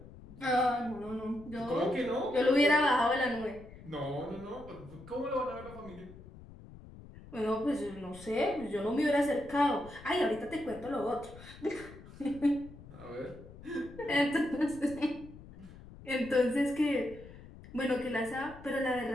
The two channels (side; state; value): left; noise; rumble, 18 dB below the sound